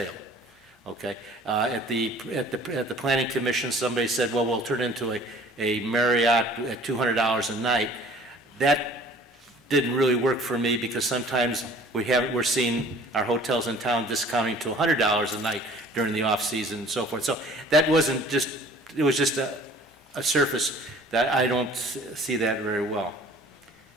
Okay. At the Planning Commission, somebody said, well, we'll turn it into a Marriott at $200 a night. That didn't really work for me because sometimes we're seeing our hotels in town discounting to $100 a night during the off season and so forth. So that wasn't just, it was just a surface that I don't see that very well.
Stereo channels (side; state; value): both; normal; correlation 0.50